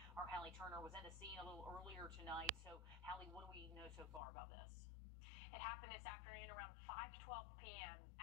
Our Hallie Turner was at the scene a little earlier tonight. So, Hallie, what do we know so far about this? It happened this afternoon around 5:12 p.m.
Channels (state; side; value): drops out; right; at 4.2 s